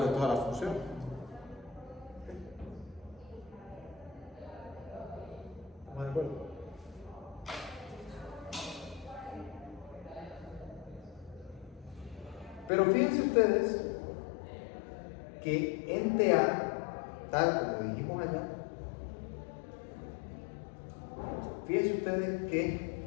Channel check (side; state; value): right; drops out; at 12.7 s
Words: de toda la función. ¿Estamos de acuerdo? Pero fíjense ustedes que en TA, tal como dijimos allá, fíjense ustedes